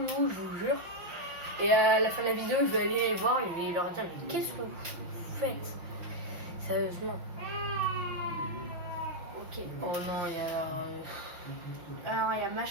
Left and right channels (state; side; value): late; left; 6.0 ms